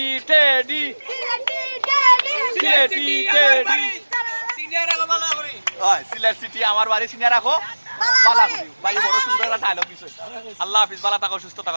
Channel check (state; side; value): inverted; both; correlation -1.00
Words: টেডি সিনিয়র রাখো ভালো করে হয় সিলেট সিটি আমার বাড়ি সিনিয়র রাখো ভালো করি ভাই বড় সুন্দর একটা ডায়লগ দিছে আল্লাহ হাফেজ ভালো থাকো সুস্থ